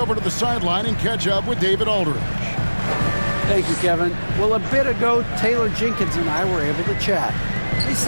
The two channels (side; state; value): both; inverted; correlation -1.00